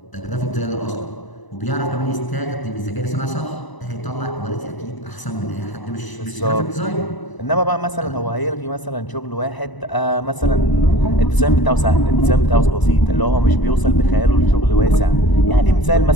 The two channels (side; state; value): right; late; 1.0 ms